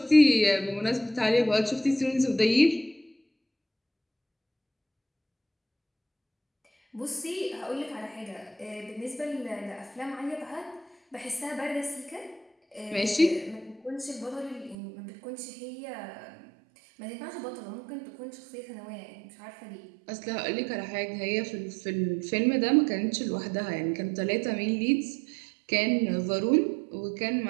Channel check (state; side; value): drops out; left; at 14.8 s